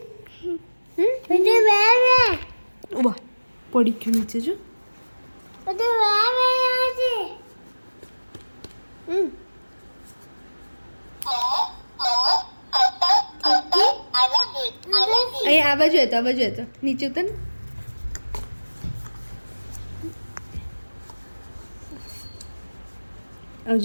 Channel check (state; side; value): inverted; both; correlation -1.00